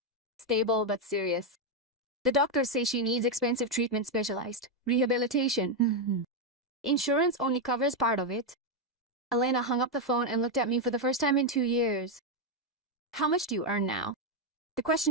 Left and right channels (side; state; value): both; normal; correlation 0.03